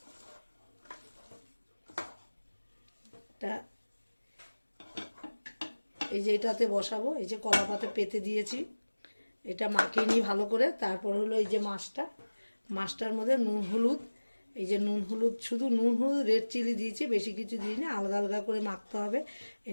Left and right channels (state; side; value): inverted; both; correlation -1.00